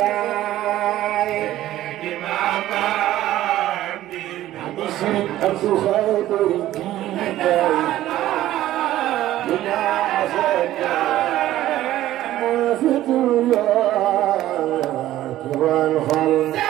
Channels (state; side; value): quieter; left; 14.1 dB